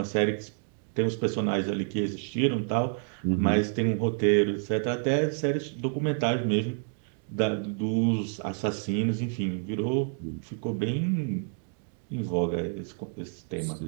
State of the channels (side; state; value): left; silent; 57 dB below the other